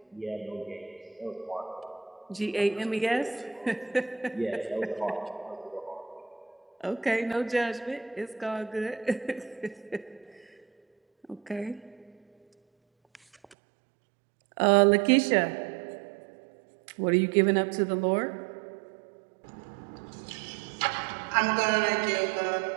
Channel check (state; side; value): drops out; left; at 13.6 s